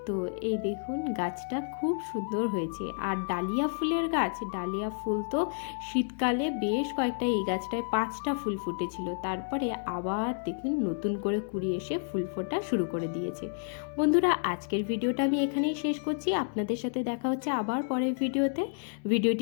তো এই দেখুন গাছটা খুব সুন্দর হয়েছে। আর ডালিয়া ফুলের গাছ, ডালিয়া ফুল তো শীতকালে বেশ কয়েকটা, এই গাছটায় 5টা ফুল ফুটেছিল, তারপরে আবার দেখুন নতুন করে কুড়ি এসে ফুল ফোটা শুরু করে দিয়েছে। বন্ধুরা আজকের ভিডিওটা আমি এখানেই শেষ করছি, আপনাদের সাথে দেখা হচ্ছে আবার পরের ভিডিওতে।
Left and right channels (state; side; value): silent; right; digital silence